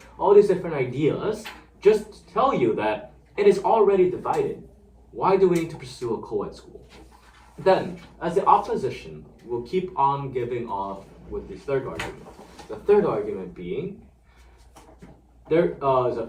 All these different ideas just tell you that it is already divided. Why do we need to pursue a co-ed school? Then, as the opposition, we'll keep on giving off with this third argument. The third argument being there is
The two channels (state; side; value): identical; both; correlation 1.00